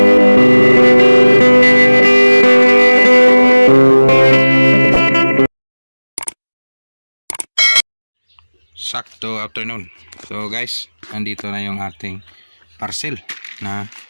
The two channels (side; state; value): both; inverted; correlation -1.00